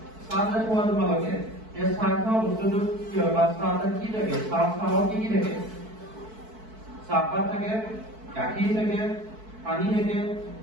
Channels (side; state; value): left; late; 4.6 ms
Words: চাহ যে খোৱা তোমালোকে, এই চাহ খোৱা বস্তুটো কি হয়? বা চাহ কি থাকে? চাহত কি কি থাকে? চাহপাত থাকে, গাখীৰ থাকে, পানী থাকে,